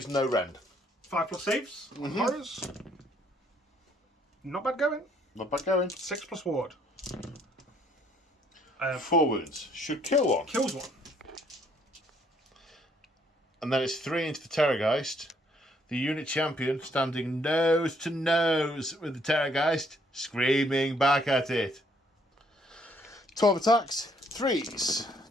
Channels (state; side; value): normal; both; correlation 0.66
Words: no rend. 5+ saves on horrors. Not bad going. Not bad going. 6+ ward. 4 wounds. Should kill 1. Kills 1. And then it's 3 into the Terrorgeist. The unit champion standing nose to nose with the Terrorgeist, screaming back at it. 12 attacks, 3s